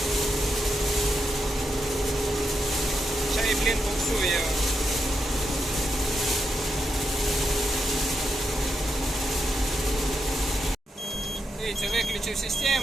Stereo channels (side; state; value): both; normal; correlation 0.84